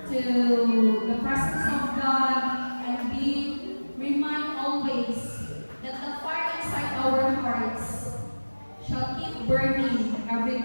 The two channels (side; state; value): both; inverted; correlation -1.00